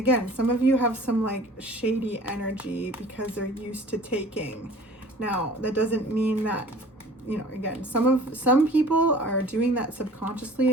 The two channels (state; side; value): normal; both; correlation 0.46